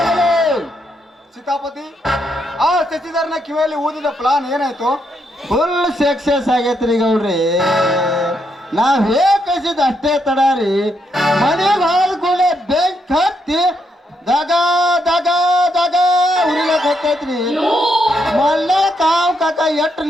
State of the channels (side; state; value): both; normal; correlation 0.78